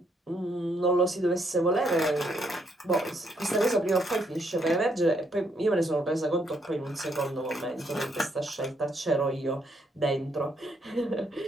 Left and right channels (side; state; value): both; normal; correlation 0.73